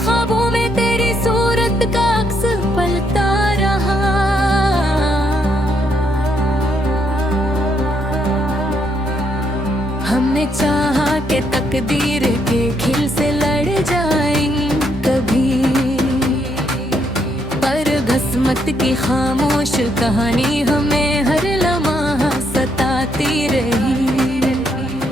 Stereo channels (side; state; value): both; normal; correlation 0.75